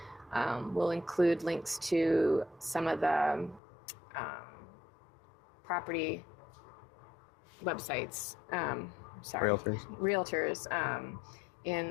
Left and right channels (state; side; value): drops out; right; at 3.6 s